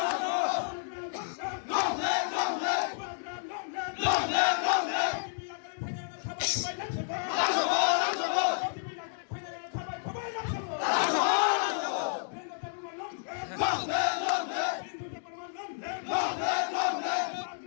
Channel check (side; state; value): right; silent; digital silence